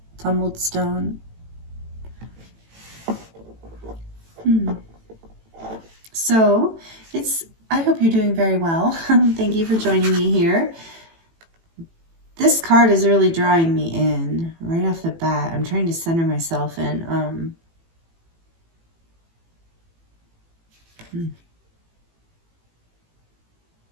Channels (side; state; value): left; late; 18 ms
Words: Tumbled stone. So I hope you're doing very well. Thank you for joining me here. This card is really drawing me in right off the bat. I'm trying to center myself in.